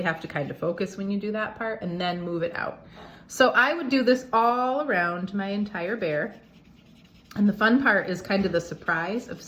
have to kind of focus when you do that part, and then move it out. So I would do this all around my entire bear. And the fun part is kind of the surprise of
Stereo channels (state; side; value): identical; both; correlation 1.00